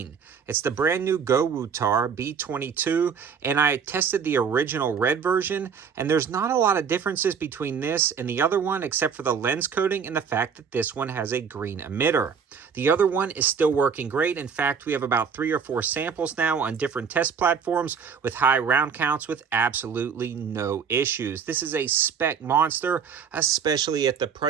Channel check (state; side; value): quieter; left; 6.6 dB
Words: It's the brand new GOWUTAR B22, and I tested the original red version, and there's not a lot of differences between this and the other one, except for the lens coating and the fact that this one has a green emitter. The other one is still working great. In fact, we have about 3 or 4 samples now on different test platforms with high round counts with absolutely no issues. This is a spec monster, especially at the